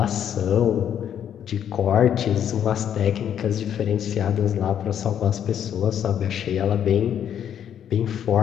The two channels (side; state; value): right; quieter; 9.4 dB